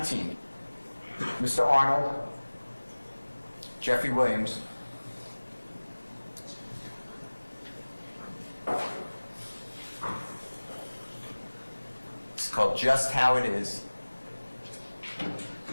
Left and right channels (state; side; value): inverted; both; correlation -1.00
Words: Mr. Arnold, Jeffrey Williams, it's called Just How It Is.